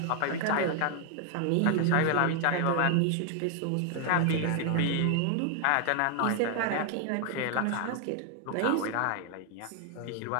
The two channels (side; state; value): both; different; correlation 0.00